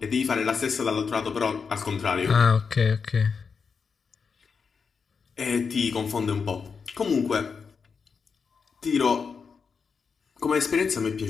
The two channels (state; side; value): quieter; right; 5.6 dB